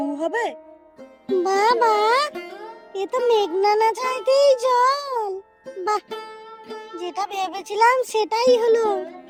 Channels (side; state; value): both; identical; correlation 1.00